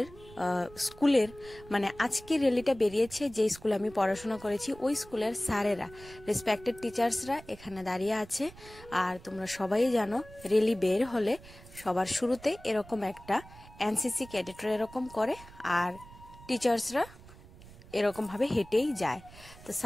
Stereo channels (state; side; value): noise; right; rumble, 20 dB below the sound